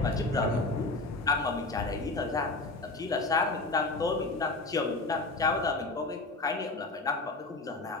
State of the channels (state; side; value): quieter; right; 3.2 dB